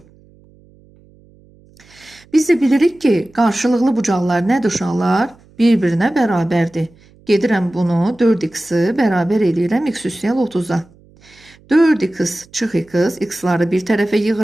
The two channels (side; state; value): right; noise; hum, 28 dB below the sound